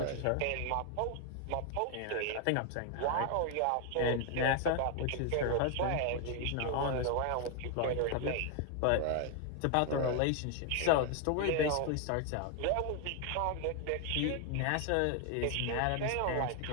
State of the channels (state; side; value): different; both; correlation 0.00